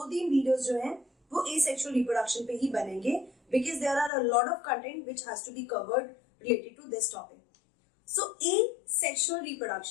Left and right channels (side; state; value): right; drops out; at 4.1 s